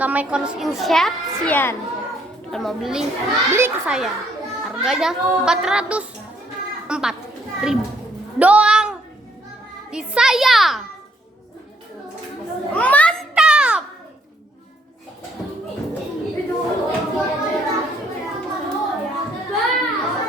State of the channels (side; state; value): both; normal; correlation 0.68